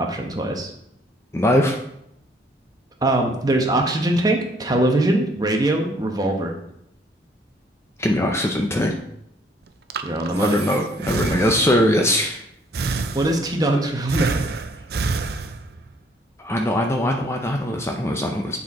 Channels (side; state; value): both; normal; correlation 0.63